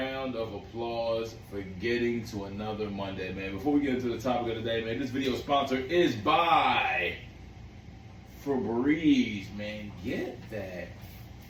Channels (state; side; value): identical; both; correlation 1.00